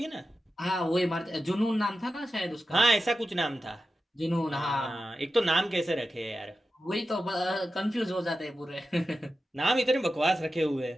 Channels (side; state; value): both; normal; correlation 0.92